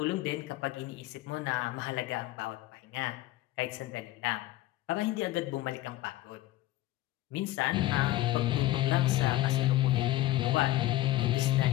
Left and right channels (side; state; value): right; quieter; 16.1 dB